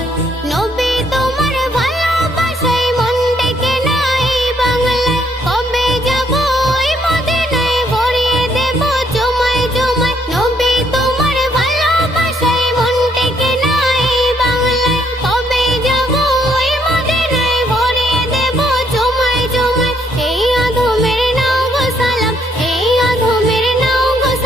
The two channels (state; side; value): normal; both; correlation 0.70